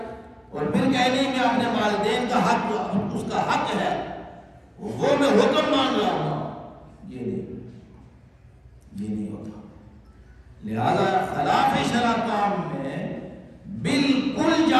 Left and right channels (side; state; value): both; identical; correlation 1.00